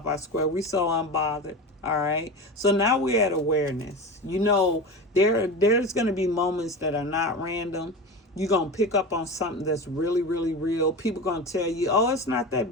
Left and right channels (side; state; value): both; normal; correlation 0.27